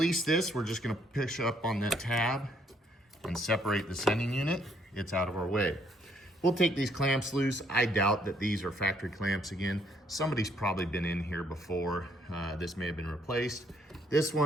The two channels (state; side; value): normal; both; correlation 0.68